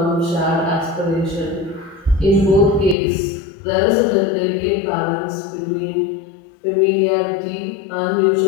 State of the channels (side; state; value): right; drops out; at 3.0 s